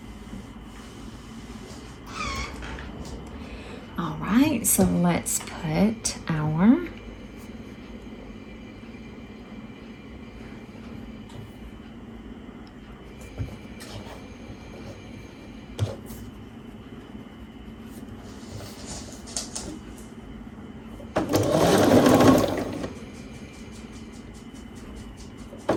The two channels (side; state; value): both; identical; correlation 1.00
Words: right, so let's put our